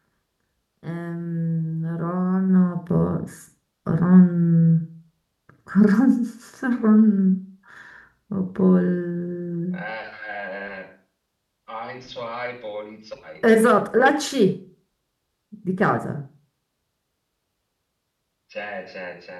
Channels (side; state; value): both; identical; correlation 1.00